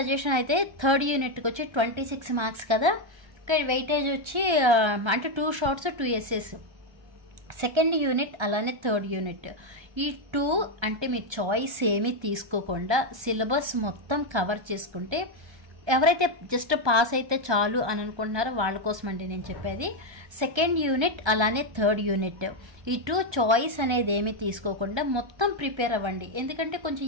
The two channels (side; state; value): left; late; 1.3 ms